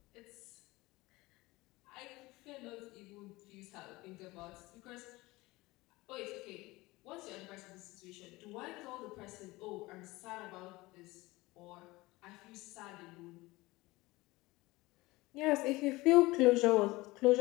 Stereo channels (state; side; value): quieter; right; 20.9 dB